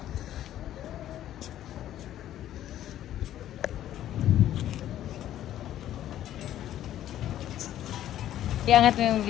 Iangat mo yung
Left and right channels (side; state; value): right; quieter; 12.2 dB